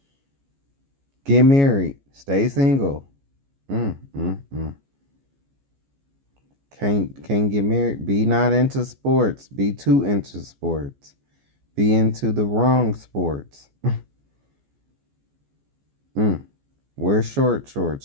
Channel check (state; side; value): late; left; 14 ms